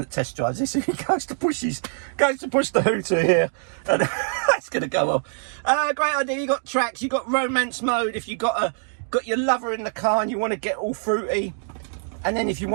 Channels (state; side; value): silent; left; 62 dB below the other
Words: that test drives this, he goes to push the hooter here, and that's going to go off. Great idea. You got tracks. You got romance mode. If you got your lover in the car and you want to get all fruity, and then if you